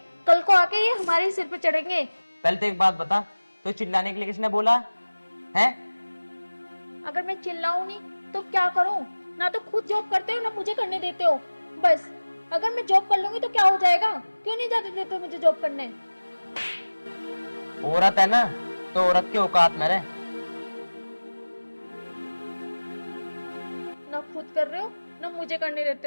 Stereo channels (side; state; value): both; inverted; correlation -1.00